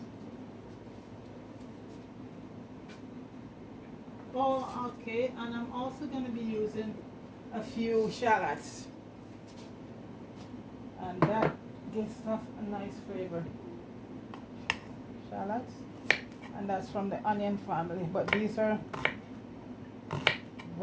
Oh, okay, and I'm also going to be using a few shallots, and that gives stuff a nice flavor. Shallots, and that's from the onion family, but these are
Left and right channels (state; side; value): identical; both; correlation 1.00